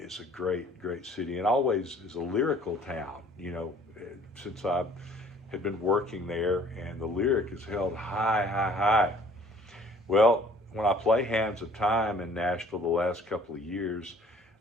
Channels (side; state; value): both; normal; correlation 0.55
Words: a great, great city, and always is a lyrical town, since I had been working there, and the lyric is held high, high, high. Well, when I play Hands of Time in Nashville the last couple of years,